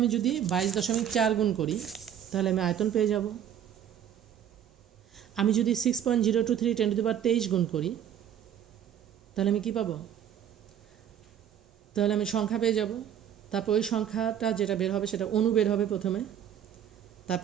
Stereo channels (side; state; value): left; quieter; 9.7 dB